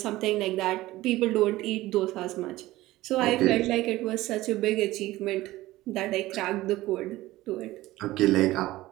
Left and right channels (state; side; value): quieter; left; 17.3 dB